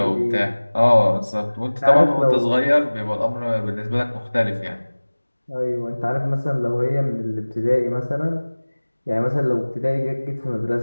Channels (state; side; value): inverted; both; correlation -1.00